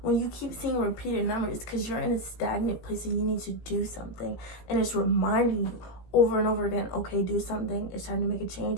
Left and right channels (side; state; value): right; late; 17 ms